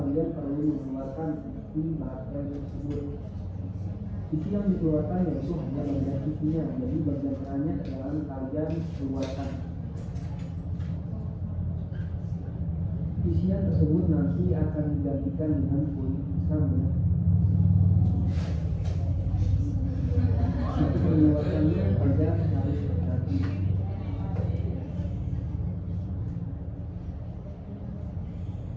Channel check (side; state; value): both; identical; correlation 1.00